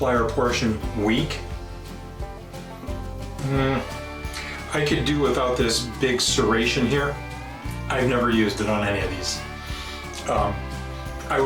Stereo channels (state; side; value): identical; both; correlation 1.00